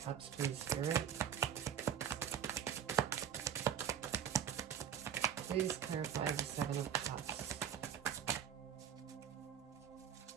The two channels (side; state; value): left; quieter; 9.0 dB